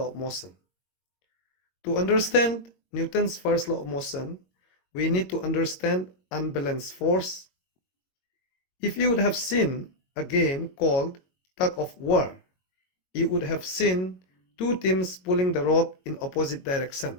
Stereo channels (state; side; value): late; right; 22 ms